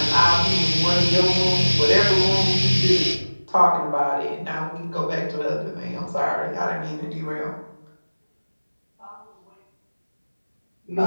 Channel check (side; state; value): both; inverted; correlation -1.00